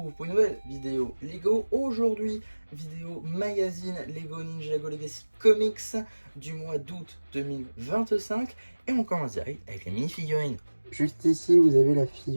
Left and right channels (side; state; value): both; inverted; correlation -1.00